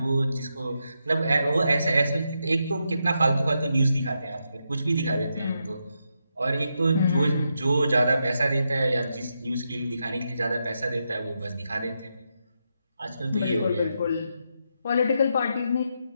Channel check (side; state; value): both; inverted; correlation -0.84